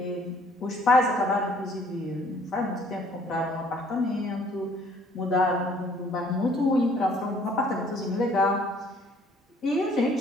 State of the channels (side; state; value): both; normal; correlation 0.59